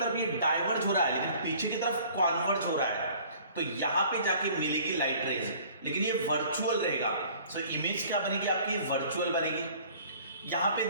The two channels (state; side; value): inverted; both; correlation -0.51